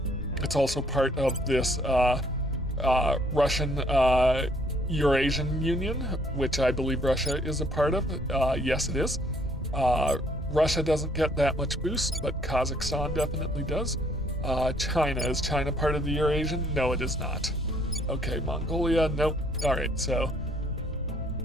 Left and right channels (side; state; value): both; normal; correlation 0.64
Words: it's also part of this Russian Eurasian Union, which I believe Russia is a part of. Yes, it is. Russia doesn't get that much boost, but Kazakhstan definitely does. China, is China part of the Eurasian? No, it is not. Okay, Mongolia, nope. All right, so